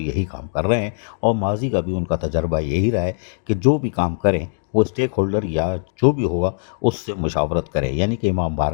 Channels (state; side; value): silent; right; digital silence